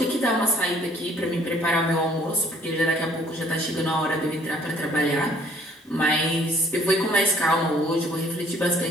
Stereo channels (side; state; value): both; normal; correlation 0.60